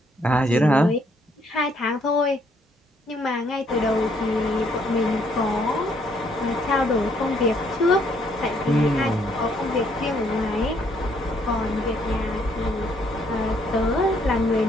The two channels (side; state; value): both; normal; correlation 0.69